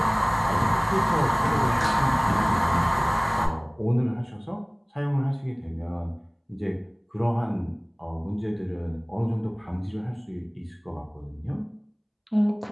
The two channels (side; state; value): both; identical; correlation 1.00